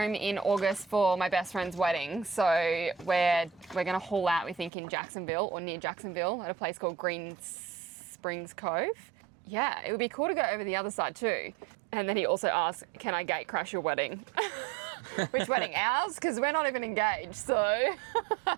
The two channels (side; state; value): left; drops out; at 4.7 s